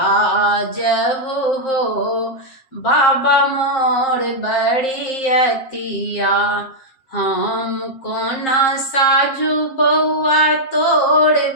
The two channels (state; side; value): late; right; 7.6 ms